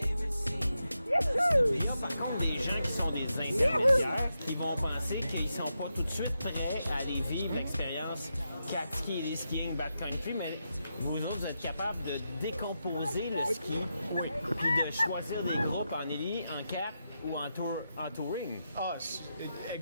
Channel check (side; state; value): both; inverted; correlation -0.87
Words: Il y a par contre des gens qui sont des intermédiaires qui vont penser qu'ils sont pas tout de suite prêts à aller vivre l'expérience ski et skiing backcountry, mais vous autres, vous êtes capables de décomposer le ski, puis de choisir des groupes en élite, en cap ou en touring. Ah, c'est